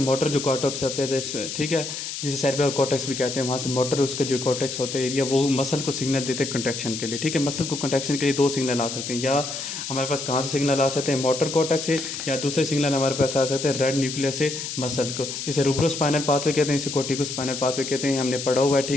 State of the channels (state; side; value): noise; left; hiss, 6 dB below the sound